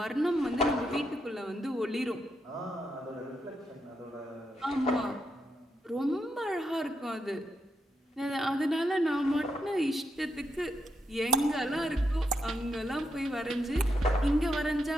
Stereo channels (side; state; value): both; normal; correlation 0.82